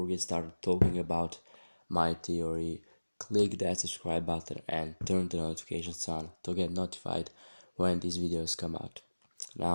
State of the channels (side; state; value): both; inverted; correlation -1.00